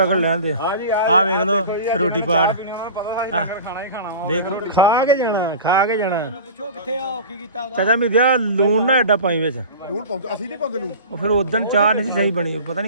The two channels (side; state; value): both; inverted; correlation -0.35